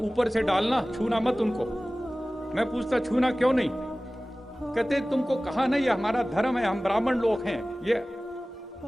से डालना, छूना मत उनको। मैं पूछता छूना क्यों नहीं? कहते तुमको कहा नहीं, ये हमारा धर्म है, हम ब्राह्मण लोग हैं, ये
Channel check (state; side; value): normal; both; correlation 0.98